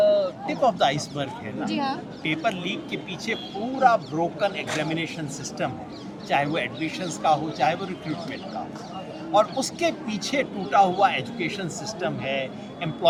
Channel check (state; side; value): identical; both; correlation 1.00